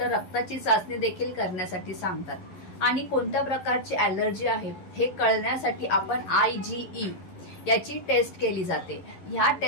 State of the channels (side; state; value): right; late; 11 ms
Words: रक्ताची चाचणी देखील करण्यासाठी सांगतात. आणि कोणत्या प्रकारची ॲलर्जी आहे हे कळण्यासाठी आपण IgE याची टेस्ट केली जाते. ह्या